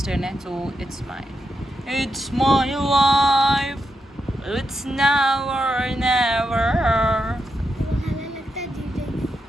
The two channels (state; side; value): normal; both; correlation 0.85